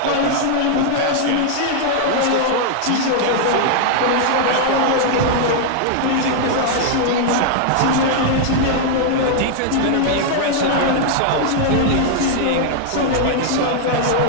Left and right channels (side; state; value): both; different; correlation 0.00